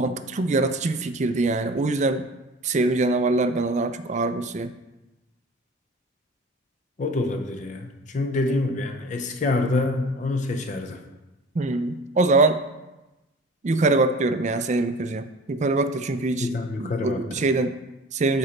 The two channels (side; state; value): both; normal; correlation 0.41